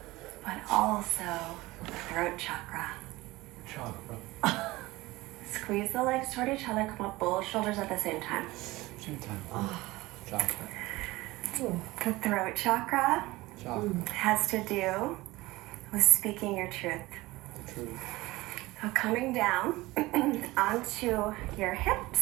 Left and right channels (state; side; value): quieter; left; 19.8 dB